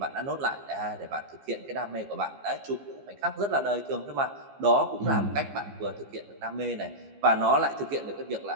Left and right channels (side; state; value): left; late; 15 ms